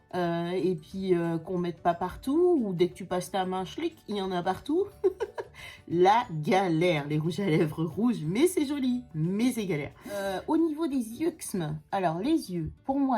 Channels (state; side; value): identical; both; correlation 1.00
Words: et puis qu'on mette pas partout, ou dès que tu passes ta main, schlick, il y en a partout. La galère, les rouges à lèvres rouges, mais c'est joli, mais c'est galère. Au niveau des yeux, alors les yeux, pour